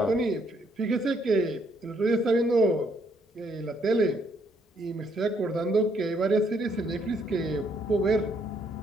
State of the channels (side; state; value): both; normal; correlation 0.71